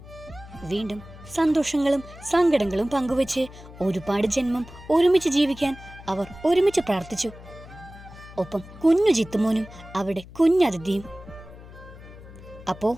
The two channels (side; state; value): left; noise; hum, 18 dB below the sound